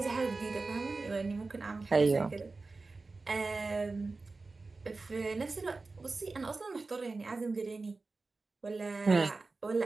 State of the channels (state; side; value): quieter; left; 3.7 dB